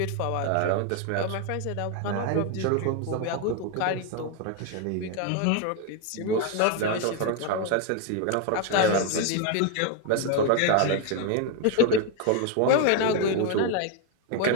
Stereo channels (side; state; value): both; different; correlation 0.01